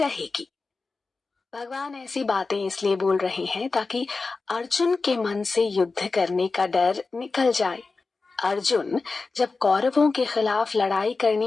भगवान ऐसी बातें इसलिए बोल रहे हैं ताकि अर्जुन के मन से युद्ध करने का डर निकल जाए। अर्जुन जब कौरवों के खिलाफ लड़ाई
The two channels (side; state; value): right; quieter; 4.0 dB